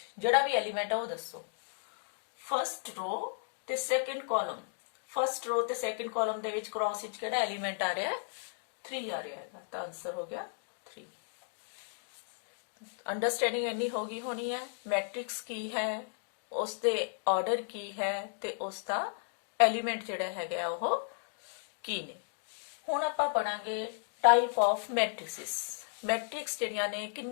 ਜਿਹੜਾ ਵੀ ਐਲੀਮੈਂਟ ਹੈ ਉਹ ਦੱਸੋ। फस्ट रो ते सेकंड कॉलम फस्ट रो ते सेकंड कॉलम दे विच क्रॉस विच केड़ा एलिमेंट आ रहा है 3 आ रहा है तो आंसर हो गया 3। अंडरस्टैंडिंग इन्नी होगी होनी है मैट्रिक्स की है उसके ऑर्डर की है ते उसका एलिमेंट जिहड़ा हैगा वो की ने। हुण आपां पढ़ांगे टाइप ऑफ मैट्रिसेस। मैट्रिक्स जिहड़ियां ने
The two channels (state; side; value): silent; right; digital silence